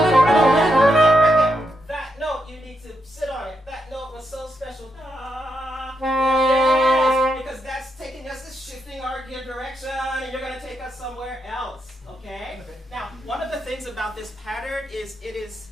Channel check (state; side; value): normal; both; correlation 0.82